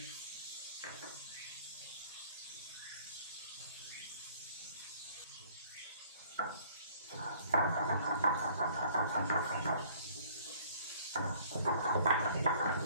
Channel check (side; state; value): both; inverted; correlation -0.57